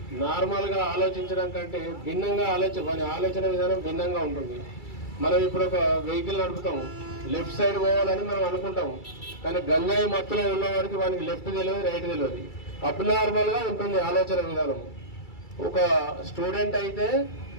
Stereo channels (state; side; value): late; right; 2.3 ms